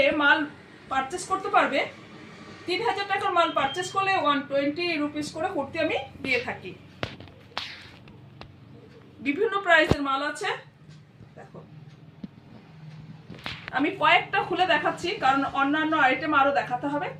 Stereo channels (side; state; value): both; identical; correlation 1.00